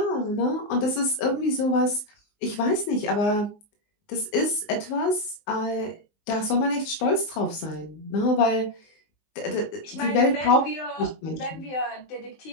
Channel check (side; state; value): right; late; 19 ms